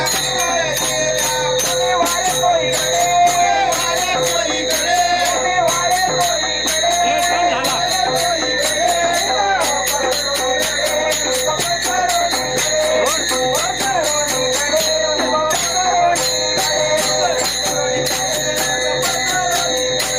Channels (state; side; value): noise; left; hum, 15 dB below the sound